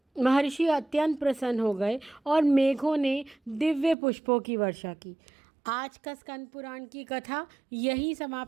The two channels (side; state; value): left; drops out; at 4.0 s